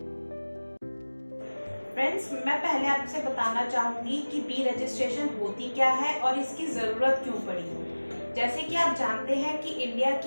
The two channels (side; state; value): both; inverted; correlation -1.00